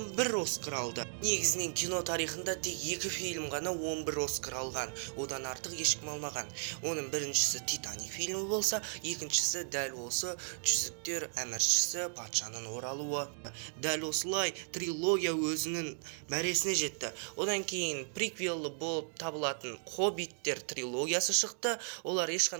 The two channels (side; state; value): left; silent; 54 dB below the other